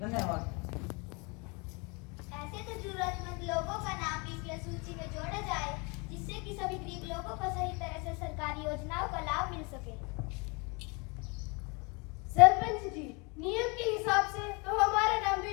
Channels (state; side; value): quieter; right; 30.2 dB